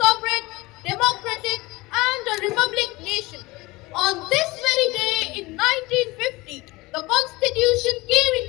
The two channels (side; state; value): right; quieter; 21.8 dB